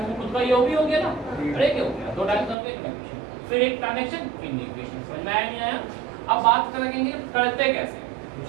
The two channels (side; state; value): left; drops out; at 2.6 s